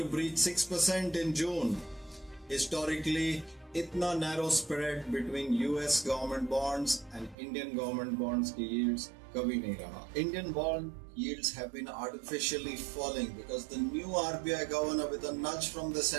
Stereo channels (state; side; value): drops out; left; at 7.4 s